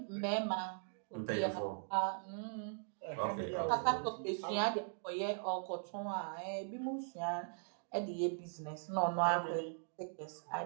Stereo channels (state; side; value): silent; left; digital silence